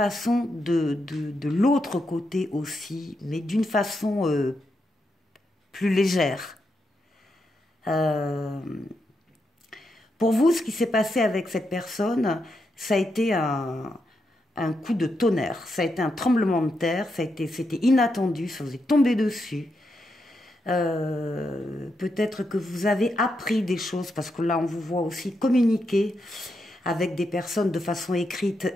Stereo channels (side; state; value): both; normal; correlation 0.83